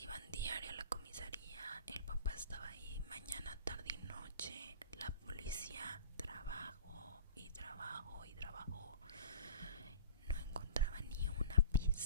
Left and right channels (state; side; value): inverted; both; correlation -0.40